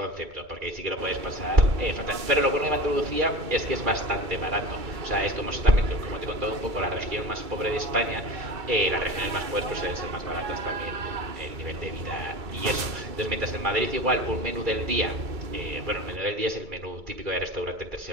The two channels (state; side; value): late; left; 2.3 ms